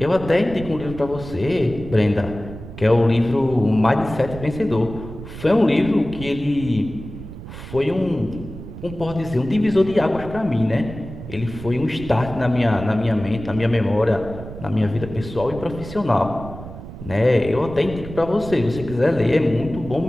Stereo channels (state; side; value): noise; right; rumble, 12 dB below the sound